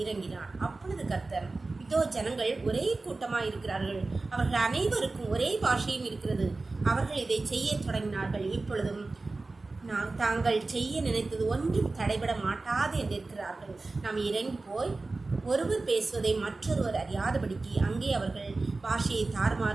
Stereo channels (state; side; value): quieter; left; 3.5 dB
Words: இறங்கினார். அப்பொழுது கர்த்தர், இதோ ஜனங்கள் ஒரே கூட்டமாக இருக்கிறார்கள். அவர்கள் அனைவருக்கும் ஒரே பாஷையும் இருக்கிறது. அவர்கள் இதை செய்ய தொடங்கினார்கள். இப்பொழுதும் தாங்கள் செய்ய நினைத்தது ஒன்றும் தடைபட மாட்டாது என்று இருக்கிறார்கள். நாம் இறங்கி போய் ஒருவர் பேசுவதை மற்றொருவர் அறியாதபடிக்கு அங்கே அவர்கள் பாஷையை